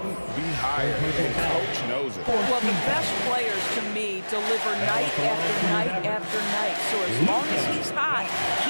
be higher, and Coach knows it. Well, the best players, to me, deliver night after night after night. So as long as he's hot,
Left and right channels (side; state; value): both; inverted; correlation -1.00